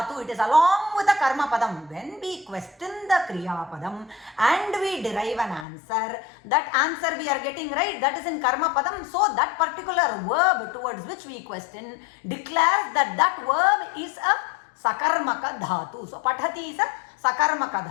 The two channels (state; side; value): drops out; right; at 5.7 s